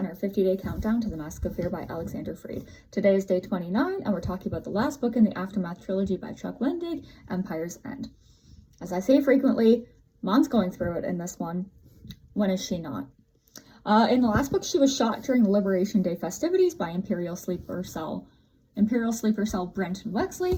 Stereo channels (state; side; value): identical; both; correlation 1.00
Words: our 50-day countdown to The Mask of Fear by Alexander Freed. Today is day 29, and we're talking about the last book in the Aftermath trilogy by Chuck Wendig, Empire's End. As I say frequently, Mon's going through it in this one. When is she not? In the last book, she was shot during the Liberation Day festivities by Imperial Sleeper Cell Brenton